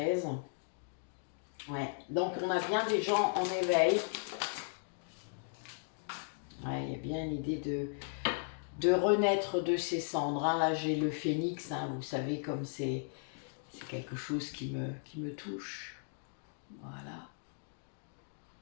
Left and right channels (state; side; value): silent; right; digital silence